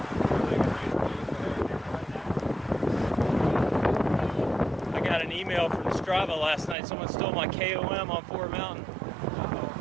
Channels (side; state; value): left; drops out; at 6.8 s